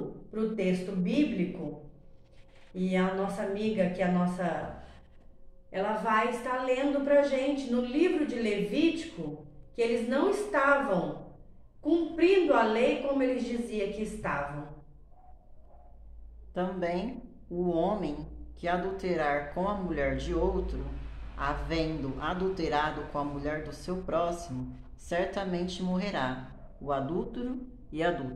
para o texto bíblico, e a nossa amiga, ela vai estar lendo para a gente no livro de Levítico, que eles não estavam cumprindo a lei como eles diziam que estavam. Também o homem que adulterar com a mulher de outro, havendo adulterado com a mulher do seu próximo, certamente morrerá, o adúltero e a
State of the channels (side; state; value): both; identical; correlation 1.00